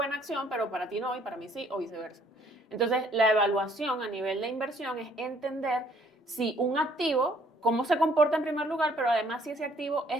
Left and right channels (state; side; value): normal; both; correlation 0.62